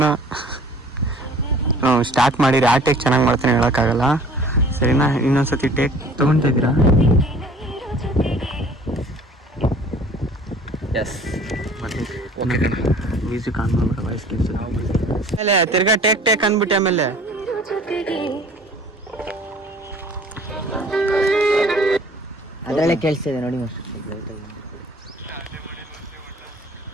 ಸ್ಟಾರ್ಟ್ ಮಾಡಿರಿ, ಆ ಟೇಕ್ ಚೆನ್ನಾಗಿ ಮಾಡ್ತಾನೆ ಹೇಳೋಕ್ಕಾಗಲ್ಲ. ಸರಿನಾ? ಇನ್ನೊಂದ್ಸತಿ ಟೇಕ್ ತಗೊಳ್ತಾ ಇದ್ದೀರಾ? ಎಸ್ ಮ್ಯೂಸಿಕ್ ಆನ್ ಮಾಡ್ಬಿಡ, ವಾಯ್ಸ್ ಆಮೇಲೆ ತಿರ್ಗಾ ಟೇಕ್ ಅಂದ್ಬಿಟ್ಟೆ. ಆಮೇಲೆ ಅದ್ರಲ್ಲೇ ಕೇಳಿಸ್ತಿದೆ ನೋಡಿ.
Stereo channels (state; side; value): normal; both; correlation 0.50